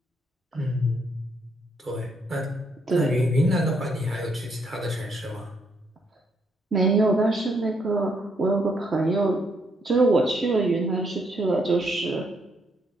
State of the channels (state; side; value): normal; both; correlation 0.74